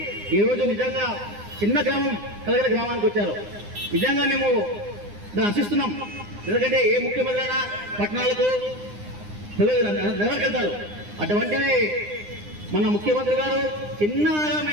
ఈరోజు నిజంగా చిన్న గ్రామం కలగల గ్రామానికి వచ్చారు. నిజంగా మేము దాన్ని ఆశిస్తున్నాం. ఎందుకంటే ఏ ముఖ్యమంత్రి అయినా పట్టణాలకు నగరికి వెళ్తారు. అటువంటిది మన ముఖ్యమంత్రి గారు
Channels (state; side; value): late; left; 9.8 ms